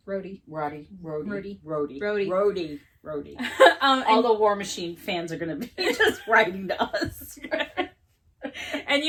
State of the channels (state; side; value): identical; both; correlation 1.00